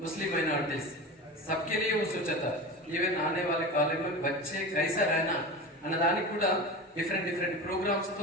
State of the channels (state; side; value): normal; both; correlation 0.29